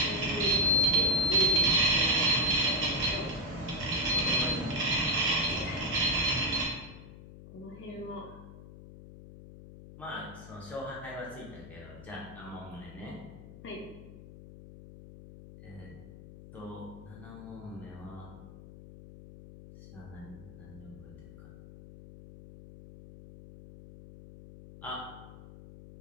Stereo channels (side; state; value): left; noise; hum, 16 dB below the sound